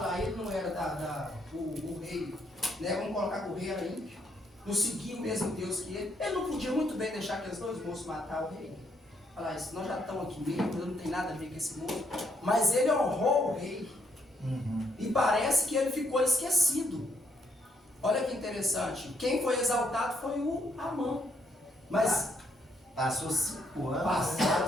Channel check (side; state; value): both; normal; correlation 0.73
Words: ele não era o rei, né? Vamos colocar com o rei era ímpio, não seguia o mesmo Deus que ele. Ele não podia muito bem deixar aqueles dois moços matar o rei. Falar isso, nós já estamos aqui mesmo, não tem nada a ver com esse mundo. Mas ele honrou o rei. E parece que ele ficou esquecido. Olha que interessante. Quem foi exaltado foi o Amã. Mas Passou 5 anos.